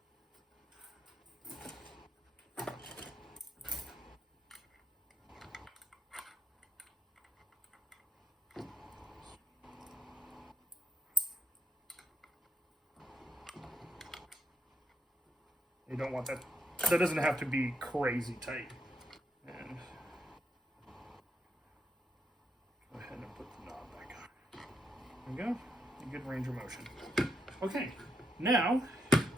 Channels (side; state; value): both; normal; correlation 0.79